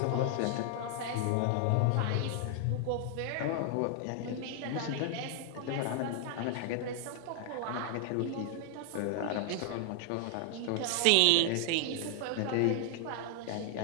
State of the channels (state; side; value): different; both; correlation 0.00